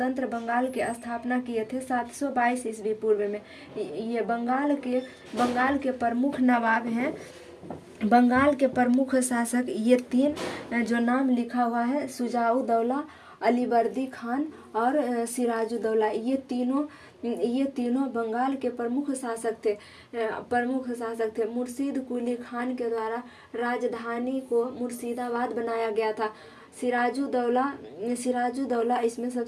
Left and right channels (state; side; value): identical; both; correlation 1.00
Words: बंगाल की स्थापना किए थे 722 ईस्वी पूर्व में। ये बंगाल के प्रमुख नवाब हैं। बंगाल के प्रमुख शासक ये तीन जो नाम लिखा हुआ है, शुजाउद्दौला, अलीवर्दी खान और सिराजुद्दौला, ये तीनों बंगाल के प्रमुख शासक थे। मुर्शीद कुली खान के द्वारा राजधानी को मुर्शिदाबाद बनाया गया था। सिराजुद्दौला इसमें